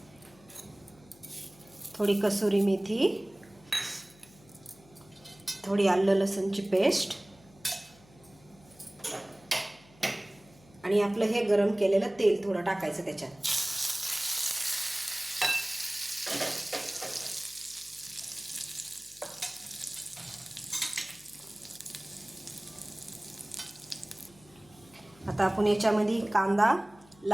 थोड़ी कसुरी मेथी, थोड़ी आलं लसूणची पेस्ट आणि आपलं हे गरम केलेलं तेल थोडं टाकायचं त्याच्यात. आता आपण याच्यामध्ये कांदा,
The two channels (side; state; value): left; noise; hum, 26 dB below the sound